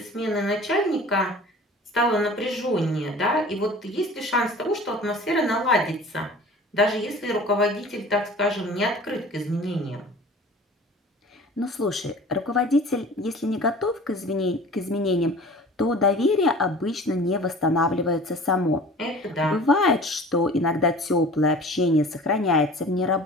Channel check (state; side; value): normal; both; correlation 0.43